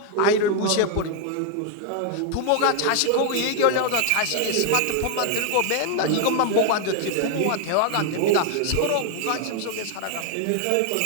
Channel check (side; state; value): both; different; correlation 0.00